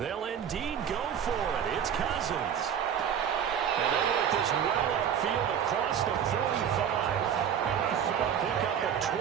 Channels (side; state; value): left; quieter; 8.5 dB